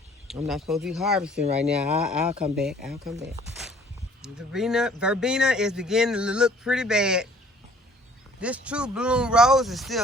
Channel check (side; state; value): both; normal; correlation 0.55